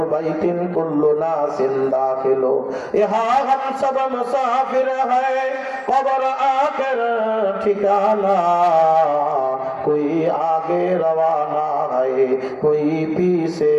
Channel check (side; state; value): both; identical; correlation 1.00